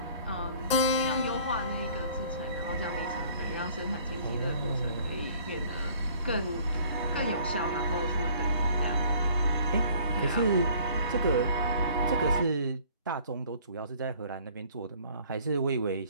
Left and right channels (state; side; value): inverted; both; correlation -0.54